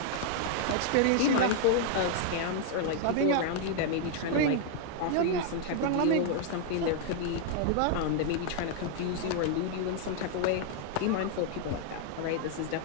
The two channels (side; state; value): both; different; correlation 0.00